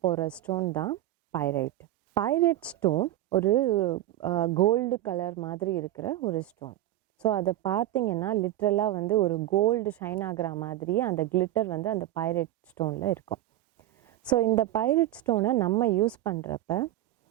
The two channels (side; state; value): left; quieter; 14.0 dB